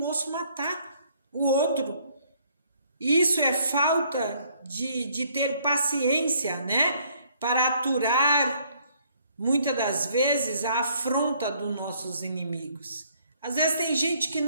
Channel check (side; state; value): both; inverted; correlation -0.65